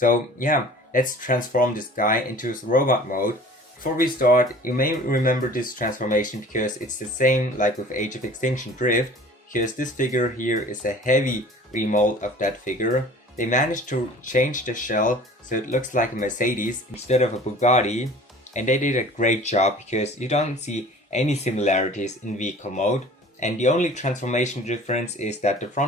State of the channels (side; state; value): both; normal; correlation 0.46